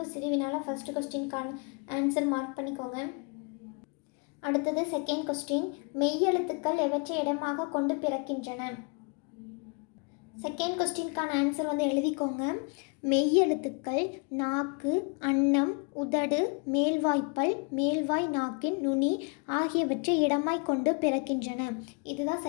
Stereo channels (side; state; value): right; quieter; 35.6 dB